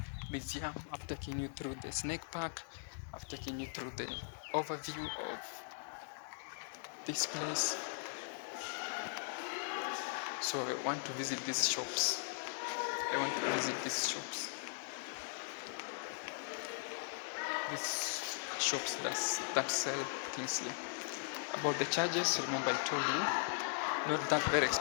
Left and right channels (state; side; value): silent; right; digital silence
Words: museum. I've taken you through the snake park. I've taken you through the overview of this place. So I want to visit these shops. These shops that sell things here. About the charges, remember I told you, not that very